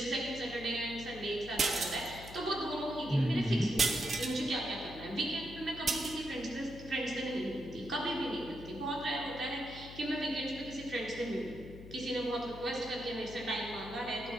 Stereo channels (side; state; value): left; noise; hum, 14 dB below the sound